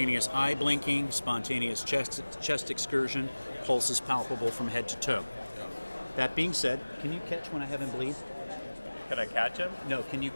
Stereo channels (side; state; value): both; inverted; correlation -1.00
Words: eye blinking, spontaneous chest excursion, pulse is palpable from head to toe. That being said, can you catch when I have him bleed? Can I catch him? No, can you